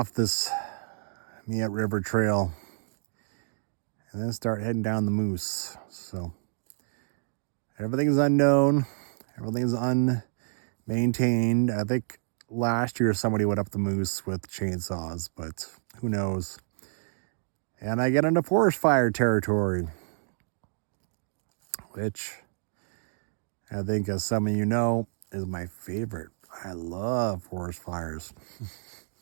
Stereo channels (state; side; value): silent; left; digital silence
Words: this Miette River trail and then start heading down the Moose. So everything's unknown. Everything's unmaintained. I think last year somebody went up the Moose with chainsaws, but who knows. And I get into forest fire territory, which I think, as some of you know, is my favorite. I love forest fires.